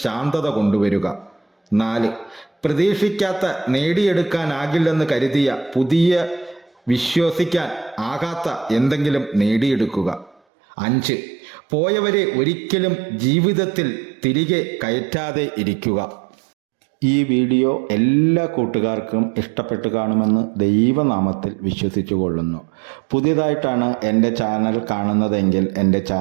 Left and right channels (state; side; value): drops out; left; at 10.4 s